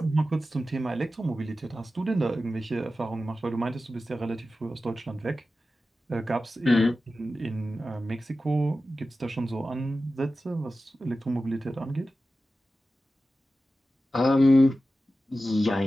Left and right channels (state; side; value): normal; both; correlation 0.94